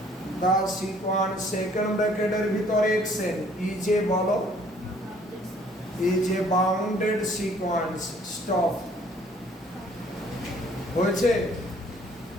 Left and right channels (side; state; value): both; normal; correlation 0.59